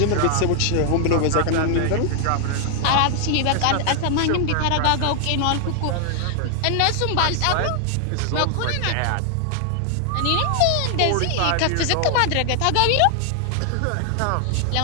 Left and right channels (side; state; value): both; different; correlation 0.00